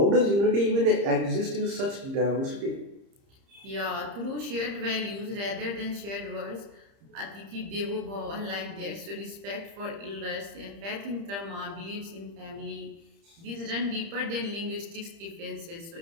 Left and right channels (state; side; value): late; left; 30 ms